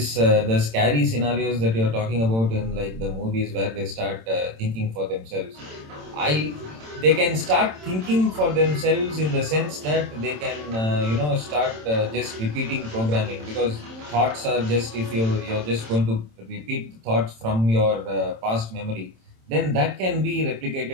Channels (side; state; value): left; late; 27 ms